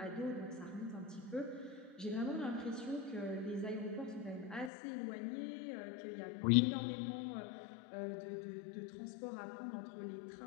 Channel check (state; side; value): drops out; right; at 4.7 s